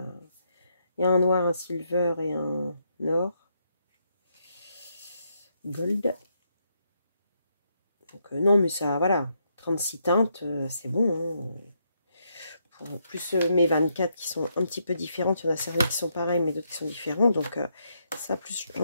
y a un noir, un silver et un or. Gold. Donc, non, mais ça, voilà. 36 teintes, c'est bon. Hein. Plus mes 24 qui sont un petit peu différentes. Il y en a certaines qui sont pareilles, mais d'autres qui sont différentes. Donc, ça, plus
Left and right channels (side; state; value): both; inverted; correlation -0.77